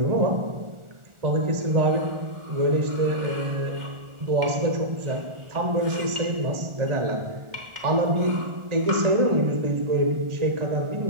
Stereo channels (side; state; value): left; late; 1.4 ms